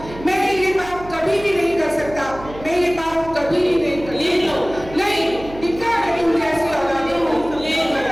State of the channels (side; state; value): right; noise; hum, 15 dB below the sound